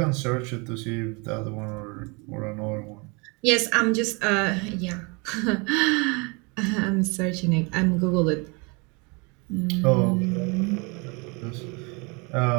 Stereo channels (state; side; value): quieter; left; 30.3 dB